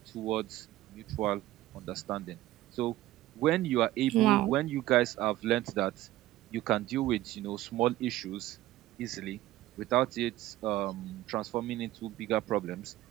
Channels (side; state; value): left; quieter; 15.7 dB